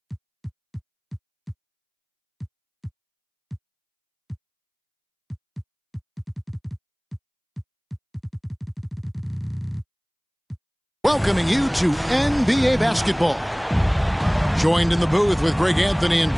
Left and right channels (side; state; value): both; identical; correlation 1.00